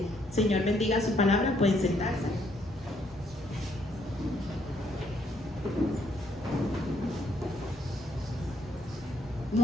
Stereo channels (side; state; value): both; normal; correlation 0.70